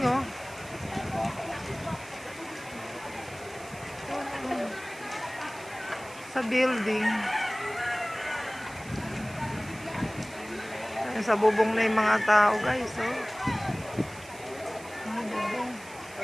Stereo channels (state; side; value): noise; right; hiss, 19 dB below the sound